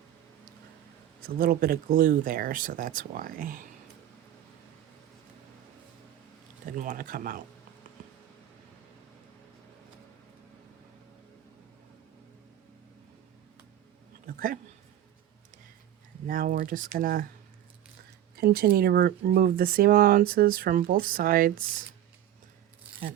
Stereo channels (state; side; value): quieter; left; 11.9 dB